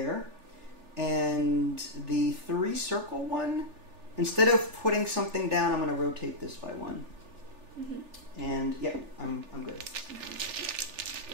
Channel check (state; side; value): late; left; 3.4 ms